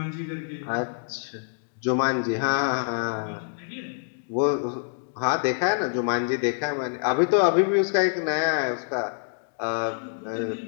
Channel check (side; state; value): right; silent; digital silence